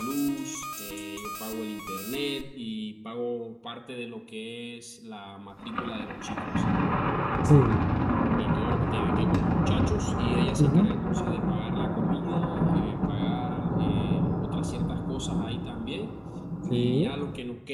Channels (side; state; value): both; identical; correlation 1.00